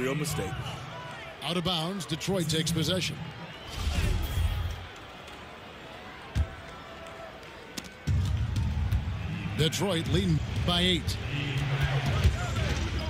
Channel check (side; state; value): both; identical; correlation 1.00